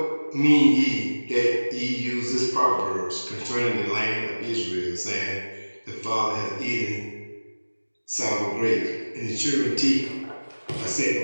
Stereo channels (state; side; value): inverted; both; correlation -1.00